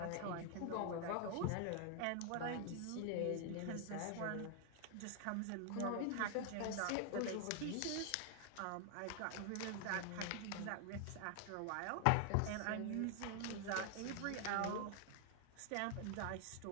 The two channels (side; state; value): both; different; correlation 0.00